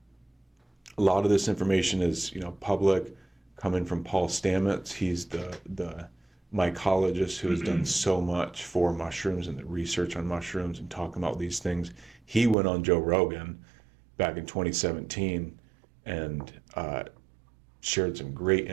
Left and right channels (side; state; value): left; drops out; at 12.6 s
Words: A lot of this information is, public, coming from Paul Stamets. He's the mycologist who has done so much for mushrooms and the research on mushrooms and talking about these things. He went on Joe Rogan back in 2017 and shared some great